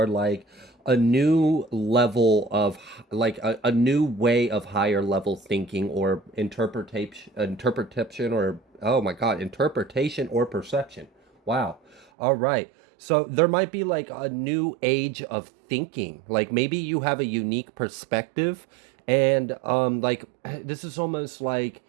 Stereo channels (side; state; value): left; drops out; at 12.1 s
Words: like a new level of like a new way of higher level thinking or interpretation or oh my god, interpretation or perception. Wow. All right. So there might be like a new age of thinking. Like maybe you have a unique perspective, and like this is almost like